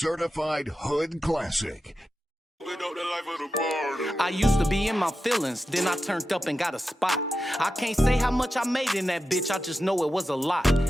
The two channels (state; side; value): normal; both; correlation 0.91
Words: hood classic. I used to be in my feelings, then I turned up and got a spot. I can't say how much I made in that bitch, I just know it was a lot.